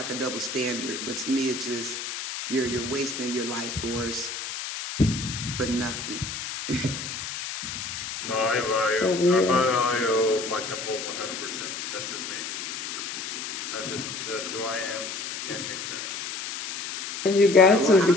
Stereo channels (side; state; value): left; noise; hiss, 6 dB below the sound